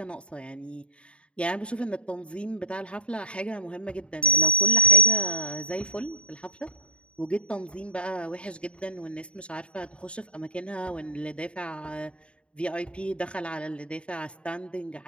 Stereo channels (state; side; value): late; right; 0.058 ms